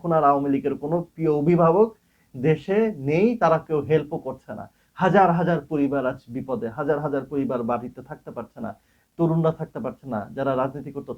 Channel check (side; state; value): both; identical; correlation 1.00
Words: আর আওয়ামী লীগের কোনো প্রিয় অভিভাবক দেশে নেই, তারা কেউ হেল্পও করছে না। হাজার হাজার পরিবার আজ বিপদে, হাজার হাজার পরিবার বাড়িতে থাকতে পারছে না, তরুণরা থাকতে পারছে না, যারা রাজনীতি করতো